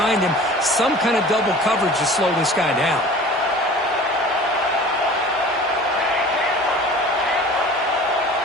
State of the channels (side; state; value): both; normal; correlation 0.43